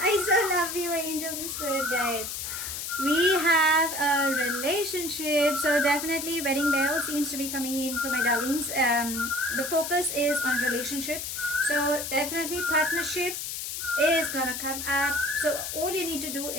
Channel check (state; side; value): noise; left; hiss, 5 dB below the sound